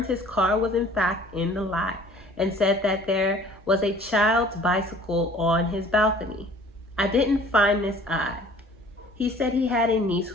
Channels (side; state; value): both; normal; correlation 0.50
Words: his car was in fact in the lot and said that there was a child's bicycle on his balcony. I didn't find this odd. He said he had a niece